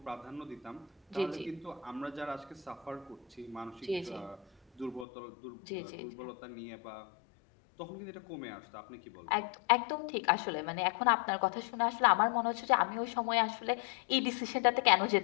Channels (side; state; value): right; drops out; at 5.1 s